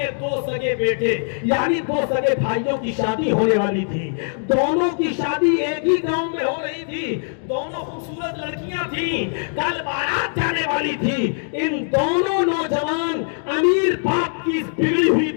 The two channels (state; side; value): silent; right; digital silence